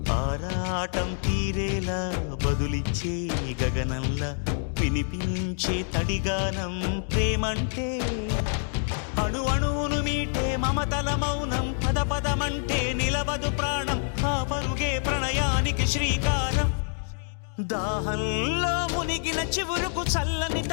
ఆరాటం తీరేలా బదులిచ్చే గగనంలా వినిపించే తడిగానం ప్రేమంటే అణు అణువును మీటే మమతల మౌనం పద పదమంటే నిలవదు ప్రాణం ఆ పరుగే ప్రణయానికి శ్రీకారం దాహంలో మునిగిన చివురుకు చల్లని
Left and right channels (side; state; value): right; silent; 60 dB below the other